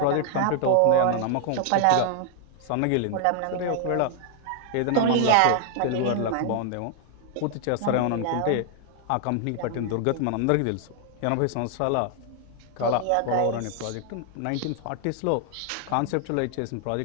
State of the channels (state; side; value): different; both; correlation 0.00